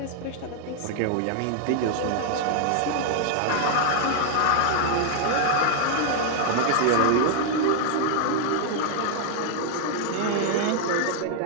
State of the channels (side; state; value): both; different; correlation -0.01